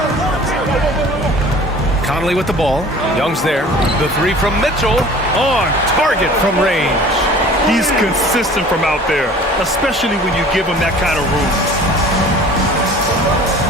Conley with the ball. Young's there. The three from Mitchell. On target from range. He's consistent from out there, especially when you give him that kind of room.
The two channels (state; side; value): normal; both; correlation 0.46